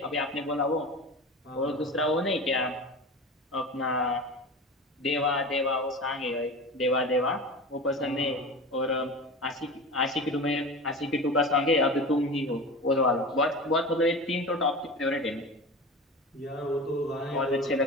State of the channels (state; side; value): normal; both; correlation 0.31